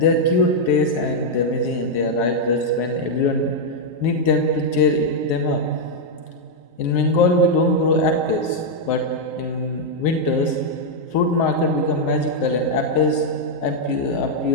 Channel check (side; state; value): right; late; 8.4 ms